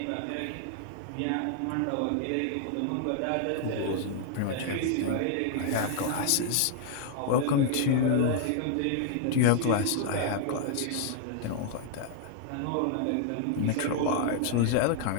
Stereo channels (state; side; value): different; both; correlation -0.01